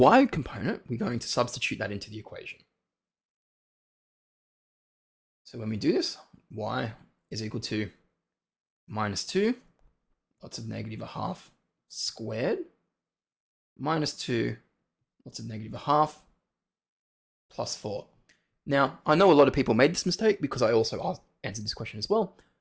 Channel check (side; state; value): both; identical; correlation 1.00